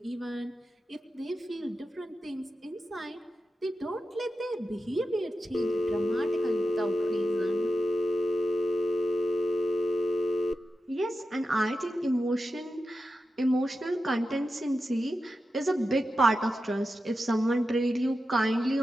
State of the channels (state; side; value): normal; both; correlation 0.91